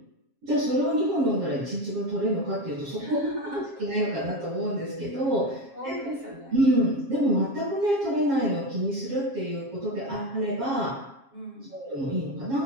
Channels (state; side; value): late; left; 7.4 ms